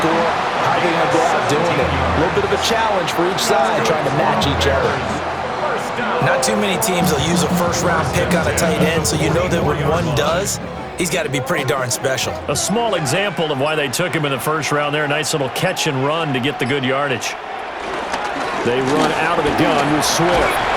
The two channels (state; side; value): identical; both; correlation 1.00